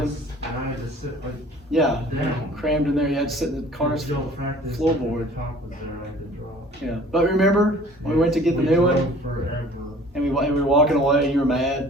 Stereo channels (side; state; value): both; normal; correlation 0.50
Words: I had to sit like Yeah, down. crammed in there. You had to sit in the car's Y'all practiced, floorboard. the top was there, I could drop. Yeah, but remember when we went to get the new one drove forever. and we were walking away and you were